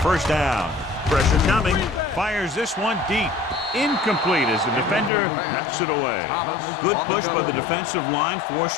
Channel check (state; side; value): drops out; right; at 5.1 s